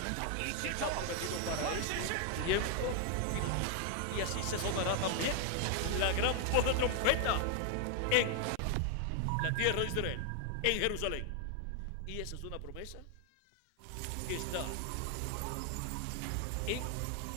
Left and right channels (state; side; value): different; both; correlation 0.00